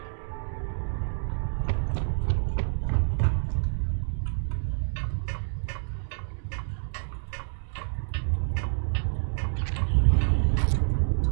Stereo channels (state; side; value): silent; left; digital silence